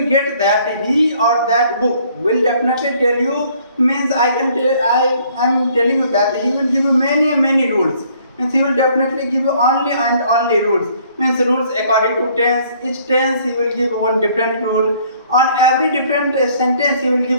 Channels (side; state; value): both; inverted; correlation -0.61